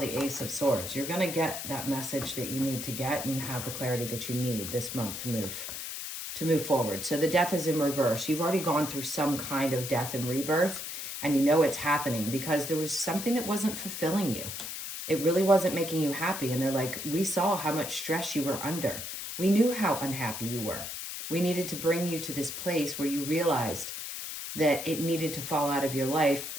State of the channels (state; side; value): noise; left; hiss, 7 dB below the sound